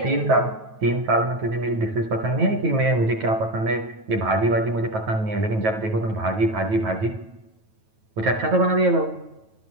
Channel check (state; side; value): late; left; 9.2 ms